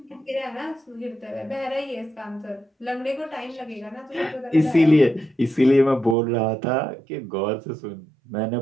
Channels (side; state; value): left; drops out; at 6.2 s